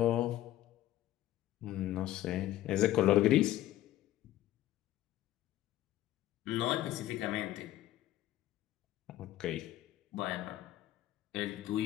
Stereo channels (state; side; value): quieter; right; 14.1 dB